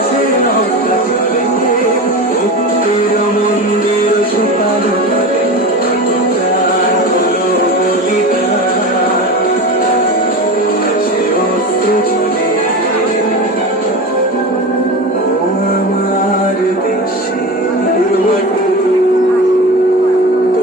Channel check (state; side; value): normal; both; correlation 0.28